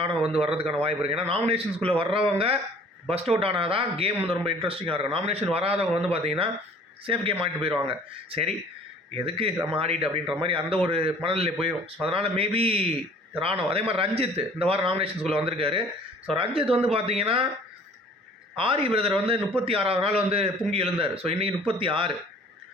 வந்து வர்றதுக்கான வாய்ப்பு இருக்குது. ஏன்னா நாமினேஷன்ஸ்குள்ளே வர்றவங்க பஸ்ட் அவுட் ஆனால் தான் கேம் வந்து ரொம்ப இன்ட்ரெஸ்டிங்காக இருக்கும். நாமினேஷன் வராதவங்க வந்து பார்த்தீங்கன்னா சேஃப் கேம் ஆடிட்டு போயிடுவாங்க. சரி எதுக்கு நம்ம ஆடிட்டு அப்படின்ற மாதிரி அந்த ஒரு மனநிலை போயிடும். ஸோ அதனால் மேபி ராணுவ. அதே மாதிரி ரஞ்சித் இந்த வாரம் நாமினேஷன்ஸ்குள்ளே வந்திருக்காரு. ஸோ ரஞ்சித் வந்து பார்த்தீங்கன்னா ஆரி பிரதர் வந்து 36வது நாள் வந்து பொங்கி எழுந்தார். ஸோ இன்றைக்கி 36.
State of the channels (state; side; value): normal; both; correlation 0.51